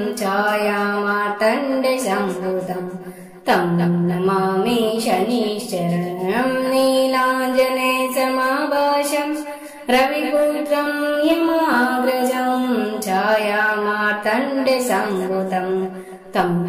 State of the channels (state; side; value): identical; both; correlation 1.00